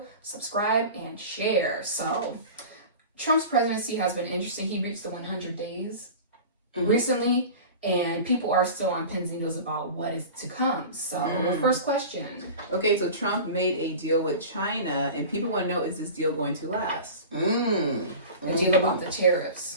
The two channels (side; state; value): both; inverted; correlation -0.35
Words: subscribe, and share. So, Trump's presidency has been interesting. He reached the 100 days recently, and people are still on pins and needles about what is to come. So, first question. Okay, so Trump made a deal with China, and people want to know, is this deal going to last? The deal about the